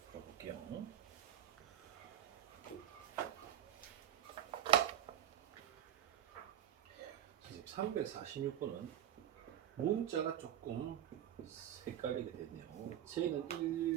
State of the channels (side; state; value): left; quieter; 10.7 dB